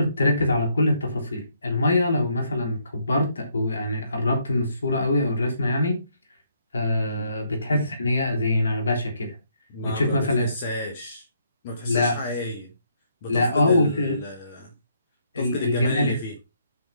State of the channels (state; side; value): inverted; both; correlation -0.72